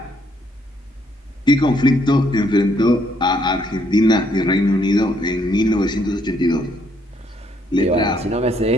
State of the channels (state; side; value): normal; both; correlation 0.70